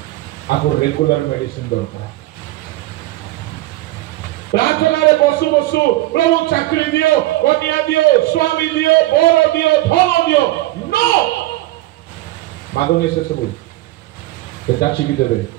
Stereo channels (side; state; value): left; quieter; 17.3 dB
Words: आपको रेगुलर मेडिसिन दरकार। प्रार्थना रे बसु बसु प्रभु चाकरी दियो, कन्या दियो, स्वामी दियो, बर दियो, धन दियो, नो मागनी से सब जाचिकी देवे,